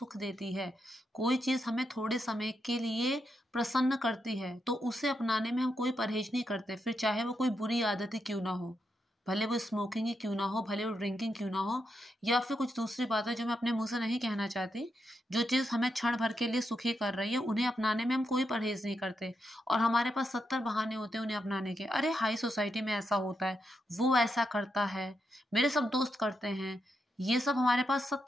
देती है, कोई चीज़ हमें थोड़े समय के लिए प्रसन्न करती है, तो उसे अपनाने में हम कोई परहेज नहीं करते, फिर चाहे वो कोई बुरी आदत ही क्यों ना हो। भले वो स्मोकिंग ही क्यों ना हो, भले वो ड्रिंकिंग क्यों ना हो, या फिर कुछ दूसरी बातें जो मैं अपने मुंह से नहीं कहना चाहती। जो चीज़ हमें क्षण भर के लिए सुखी कर रही है, उन्हें अपनाने में हम कोई परहेज नहीं करते। और हमारे पास 70 बहाने होते हैं उन्हें अपनाने के। अरे, हाई सोसाइटी में ऐसा होता है, वो ऐसा करता है, मेरे सब दोस्त करते हैं। ये सब हमारे पास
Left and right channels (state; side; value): normal; both; correlation 0.84